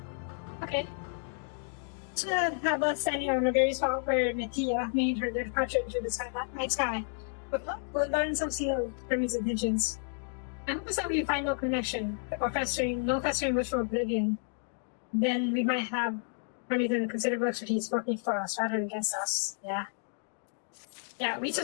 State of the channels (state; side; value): silent; right; digital silence